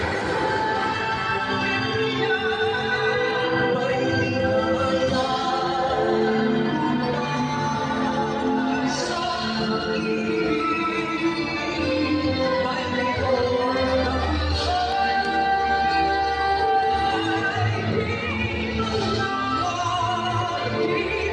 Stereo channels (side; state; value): both; identical; correlation 1.00